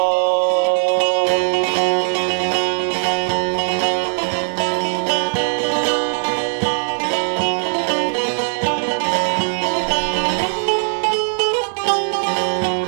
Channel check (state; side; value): silent; left; digital silence